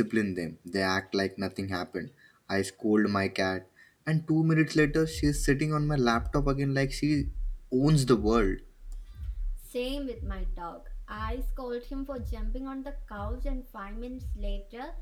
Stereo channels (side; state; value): both; identical; correlation 1.00